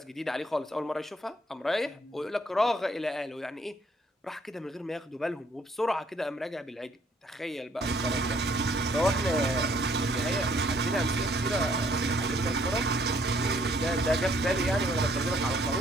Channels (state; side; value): normal; both; correlation 0.64